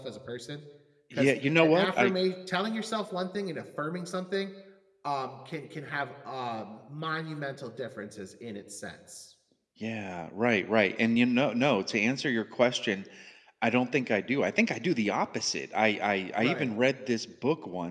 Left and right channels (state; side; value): identical; both; correlation 1.00